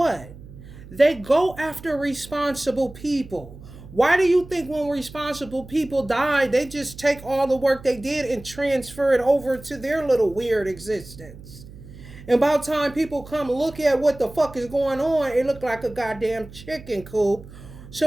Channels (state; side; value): noise; right; hum, 17 dB below the sound